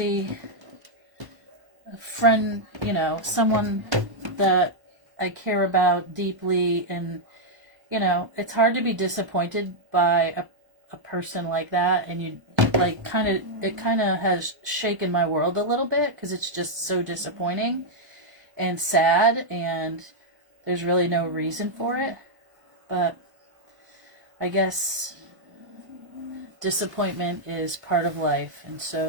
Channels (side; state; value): left; late; 1.0 ms